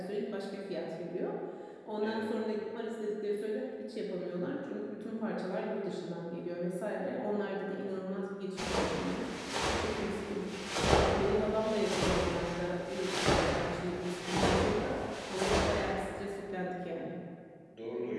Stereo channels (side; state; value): both; identical; correlation 1.00